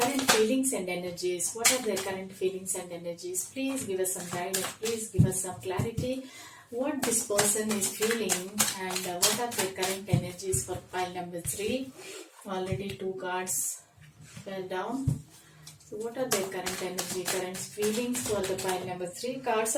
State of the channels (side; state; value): both; identical; correlation 1.00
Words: feelings and energies? What are their current feelings and energies? Please give us some guidance. Please give us some clarity. What this person is feeling, and what are their current energies for pile number 3? Already 2 cards fell down. So what are their current energy, current feelings for the pile number 3? Cards